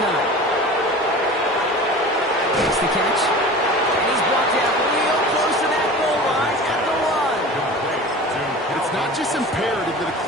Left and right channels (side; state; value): both; normal; correlation 0.37